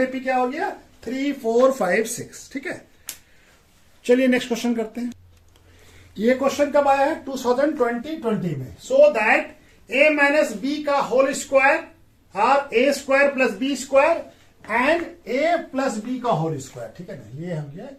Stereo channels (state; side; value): identical; both; correlation 1.00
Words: क्या हो गया 3, 4, 5, 6। ठीक है, चलिए नेक्स्ट क्वेश्चन करते हैं। ये क्वेश्चन कब आया है 2020 में। So that a minus B का होल स्क्वायर और a square plus B square and a plus B का होल स्क्वायर। ठीक है ना, ये हो गया